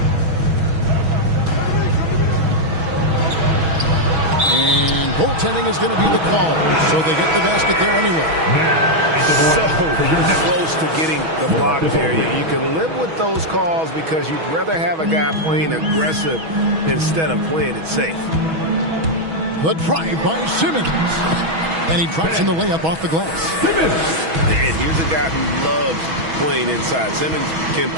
And goaltending is going to be the call, so they get the basket there anyway. So close to getting the block there. You can live with those calls because you'd rather have a guy playing aggressive instead of playing it safe. The drive by Simmons. And he drops in the layup off the glass. And here's a guy who loves playing inside. Simmons can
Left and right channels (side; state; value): left; late; 6.2 ms